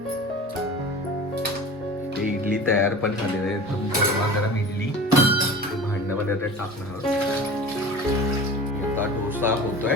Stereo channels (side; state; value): both; normal; correlation 0.37